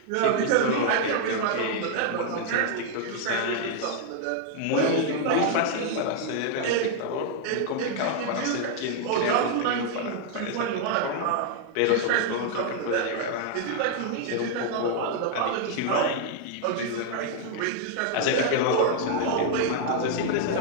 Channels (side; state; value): both; different; correlation 0.00